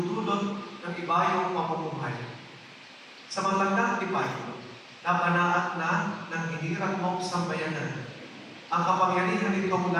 ng ibayong pamumuhay. Sa malagdang tipay, napanaat na ng hinirang mong sambayanan ang kapangyarihan nitong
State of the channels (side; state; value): both; identical; correlation 1.00